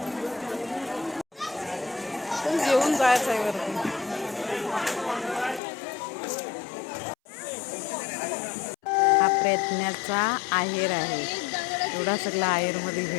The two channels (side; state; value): right; drops out; at 5.6 s